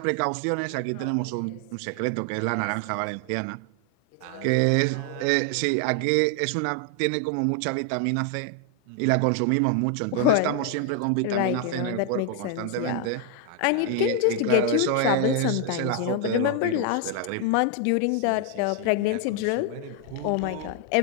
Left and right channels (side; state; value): both; different; correlation 0.00